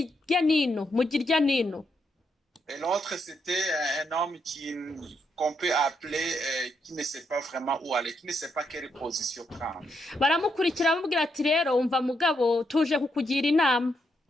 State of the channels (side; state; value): both; normal; correlation 0.79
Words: Et l'autre, c'était un homme qu'on peut appeler, qui ne sait pas vraiment où aller, qui ne sait pas quelle position prendre. Baramukurikira bamubwira ati rero umva mugabo tuje kukugira inama.